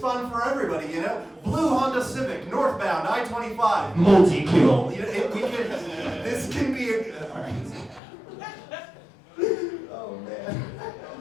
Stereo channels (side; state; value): right; drops out; at 8.0 s